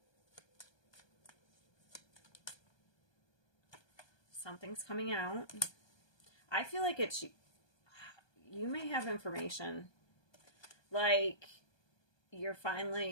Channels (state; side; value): late; right; 1.2 ms